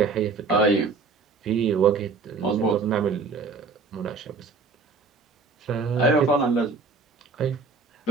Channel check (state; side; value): quieter; left; 4.3 dB